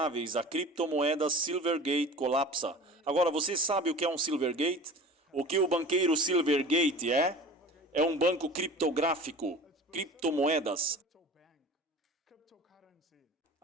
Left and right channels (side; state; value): both; normal; correlation 0.39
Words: a criptomoedas Silvergate colapsa. Agora, você sabe o que é um Silvergate? O que o banqueiro Silvergate é? É um banco criptográfico, criptomoedas.